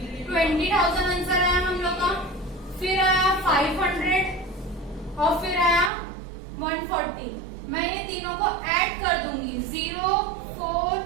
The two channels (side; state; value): left; drops out; at 5.9 s